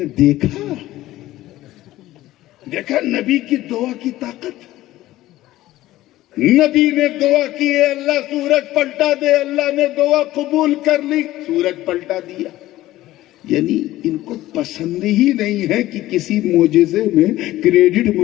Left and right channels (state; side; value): quieter; right; 15.7 dB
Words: ہیں دیکھا نبی کی دعا کی طاقت۔ نبی نے دعا کی ہے اللہ سورج پلٹا دے، اللہ نے دعا قبول کر لی، سورج پلٹا دیا۔ یعنی ان کو پسند ہی نہیں ہے کہ کسی معجزے میں کریڈٹ